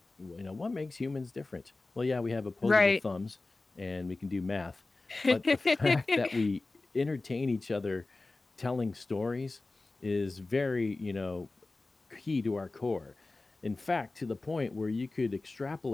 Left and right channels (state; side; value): quieter; right; 3.3 dB